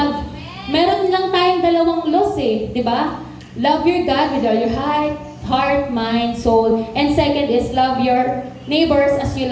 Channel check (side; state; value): both; identical; correlation 1.00